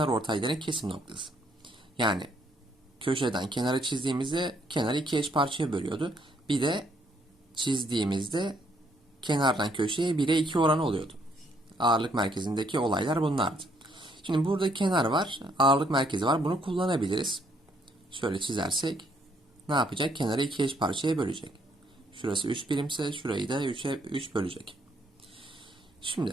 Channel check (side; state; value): both; normal; correlation 0.69